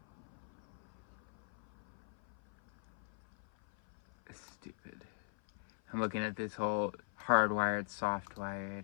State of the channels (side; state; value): right; silent; 51 dB below the other